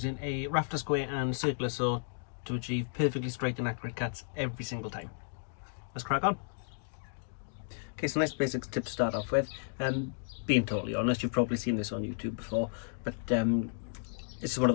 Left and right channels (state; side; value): silent; right; digital silence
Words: a rafter square and circular saw to achieve perfectly straight and accurate cuts every single time. Let's crack on. Okay, so nice basic tip to start off with. Being totally honest, you've probably seen this on YouTube before, but it's one